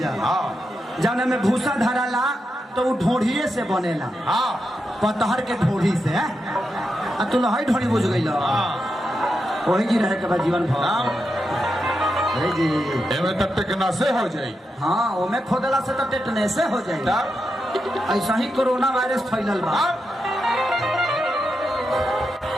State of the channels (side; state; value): both; normal; correlation 0.86